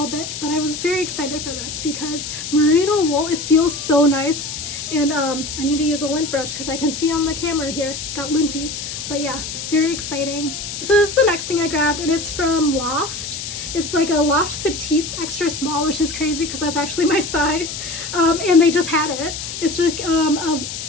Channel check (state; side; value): noise; left; hiss, 7 dB below the sound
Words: bit. But I was very excited for this because merino wool, it feels so nice. And I need to use a lint brush because I can see on the camera here, got linty. But yeah, very exciting. So this is the next thing I grabbed, and it's from Loft. It's like a Loft Petites extra small, which is crazy because that's actually my size. And they just had it. It's like a